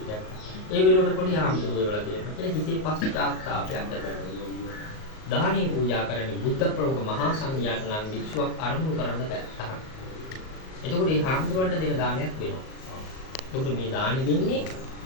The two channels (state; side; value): late; right; 38 ms